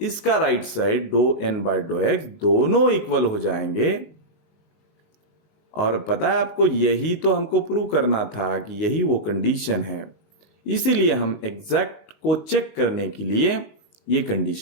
इसका राइट साइड डो n बाय डो x दोनों इक्वल हो जाएंगे। और पता है आपको, यही तो हमको प्रूव करना था कि यही वो कंडीशन है, इसीलिए हम एग्जैक्ट को चेक करने के लिए ये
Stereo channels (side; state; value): right; late; 19 ms